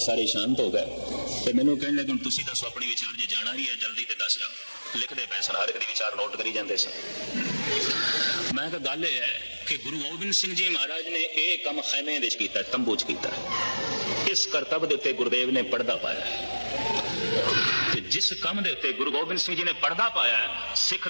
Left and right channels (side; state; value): both; inverted; correlation -1.00